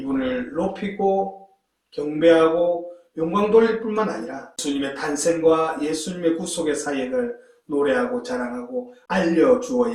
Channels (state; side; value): identical; both; correlation 1.00